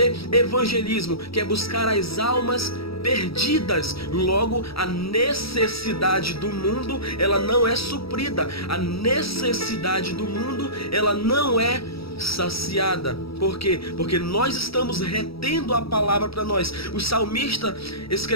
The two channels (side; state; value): right; late; 0.76 ms